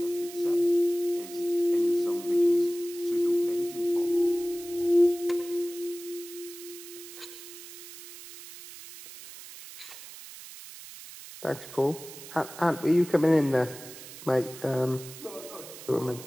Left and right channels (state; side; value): noise; right; hiss, 15 dB below the sound